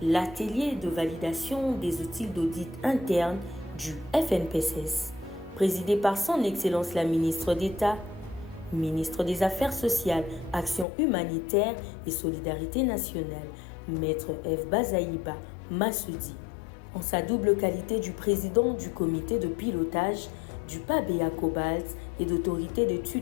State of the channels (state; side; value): drops out; right; at 10.9 s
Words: l'atelier de validation des outils d'audit interne du FNPSS, présidé par son Excellence la ministre d'État, ministre des Affaires sociales, Action humanitaire et solidarité nationale, Maître F. Bazaïba Massoudi, en sa double qualité du président du comité de pilotage du PABEA Cobalt et d'autorité de